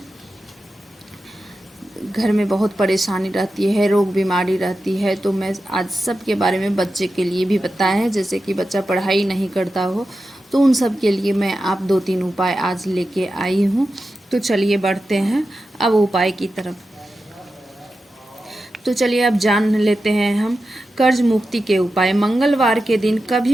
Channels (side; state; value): both; normal; correlation 0.91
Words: घर में बहुत परेशानी रहती है, रोग बीमारी रहती है, तो मैं आज सब के बारे में बच्चे के लिए भी बताया है। जैसे कि बच्चा पढ़ाई नहीं करता हो तो उन सब के लिए मैं आप 2-3 उपाय आज लेके आई हूँ। तो चलिए बढ़ते हैं अब उपाय की तरफ। तो चलिए अब जान लेते हैं हम कर्ज मुक्ति के उपाय। मंगलवार के दिन कभी